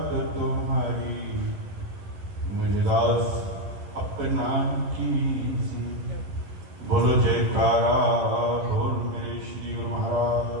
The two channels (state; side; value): late; left; 11 ms